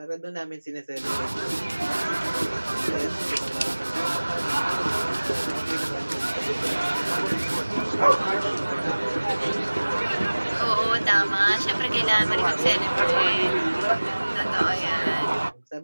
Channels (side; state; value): both; inverted; correlation -1.00